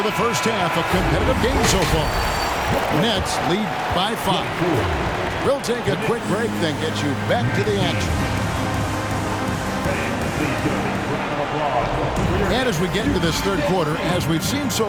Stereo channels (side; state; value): both; identical; correlation 1.00